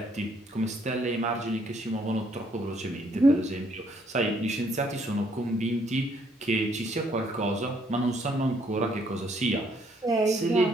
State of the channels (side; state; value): both; normal; correlation 0.68